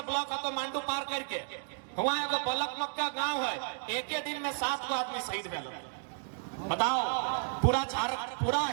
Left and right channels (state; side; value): silent; left; digital silence